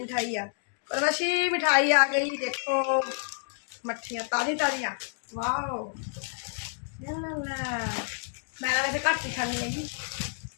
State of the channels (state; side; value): silent; right; digital silence